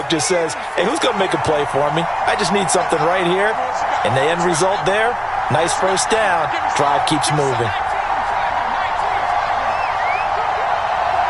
just says, hey, who's going to make a play for me? I just need something right here. And the end result there, nice first down. Drive keeps moving.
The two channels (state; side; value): identical; both; correlation 1.00